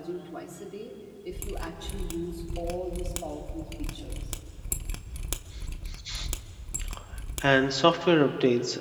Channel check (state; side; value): identical; both; correlation 1.00